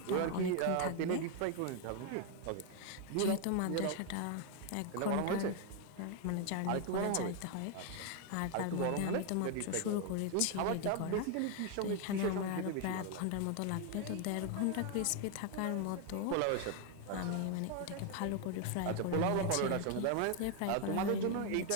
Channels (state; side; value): different; both; correlation 0.00